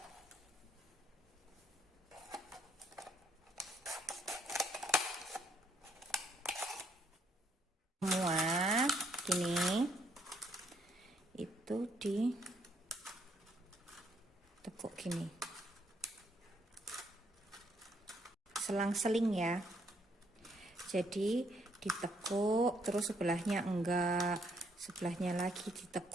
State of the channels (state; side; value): normal; both; correlation 0.70